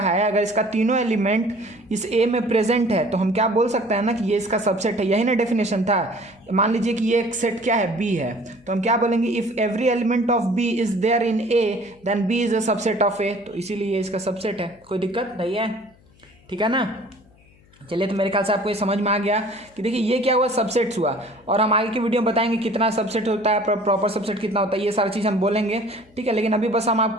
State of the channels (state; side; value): noise; left; hum, 29 dB below the sound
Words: है, अगर इसका तीनों एलिमेंट इस ए में प्रेजेंट है तो हम क्या बोल सकते हैं ना कि ये इसका सबसेट है। यही ना डेफिनेशन था। मान लीजिए कि ये एक सेट क्या है, बी है, तो हम क्या बोलेंगे, if every element of B is there in A then B is a subset of A, तो इसीलिए ये इसका सबसेट है। कोई दिक्कत नहीं है, ठीक है ना। चलिए, तो मेरे ख्याल से आपको ये समझ में आ गया कि देखिए ये क्या हुआ, सबसेट्स हुआ, और हम आगे की वीडियो में बताएंगे कितना सबसेट होता है, प्रॉपर सबसेट कितना होता है, ये सारी चीज़ हम बोलेंगे, ठीक है। लेकिन अभी बस हम